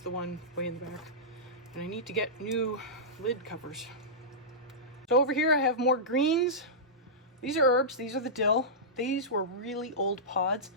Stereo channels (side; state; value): both; normal; correlation -0.15